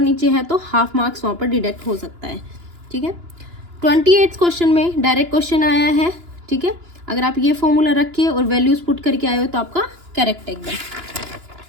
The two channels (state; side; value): late; left; 2.9 ms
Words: है तो हाफ मार्क्स वहाँ पर डिडक्ट हो सकता है। ठीक है, 28 क्वेश्चन में डायरेक्ट क्वेश्चन आया है। ठीक है, अगर आप ये फॉर्मूला रखिए और वैल्यूज पुट करके आए हो तो आपका करेक्ट है एकदम।